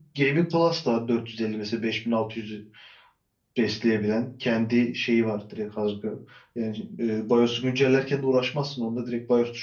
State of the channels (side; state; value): both; identical; correlation 1.00